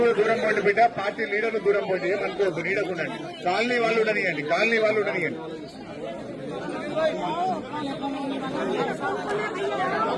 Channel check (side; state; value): both; identical; correlation 1.00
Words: కూడా దూరం పోండి బిడ్డ, పార్టీ లీడర్లు దూరం పోండి, ఏమనుకోవద్దు, నీడకుండండి. కాలనీ వాళ్ళు ఉండనియండి, కాలనీ వాళ్ళు ఉండనియండి.